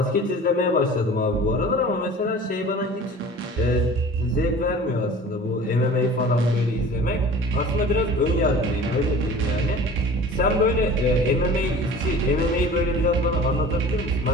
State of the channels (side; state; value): both; normal; correlation 0.42